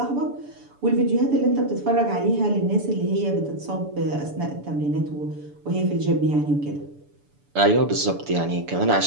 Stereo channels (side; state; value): left; late; 6.9 ms